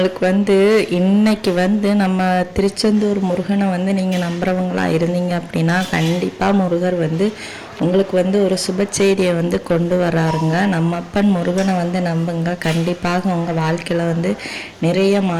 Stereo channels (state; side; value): identical; both; correlation 1.00